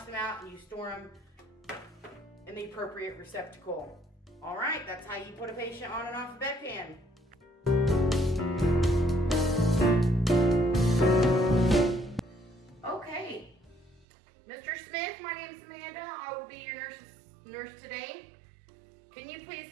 them out and you store them in the appropriate receptacle. All right, that's how you put a patient on and off a bedpan. Okay, Mr. Smith, my name's Amanda. I will be your nurse today. Can you please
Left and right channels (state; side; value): drops out; left; at 14.1 s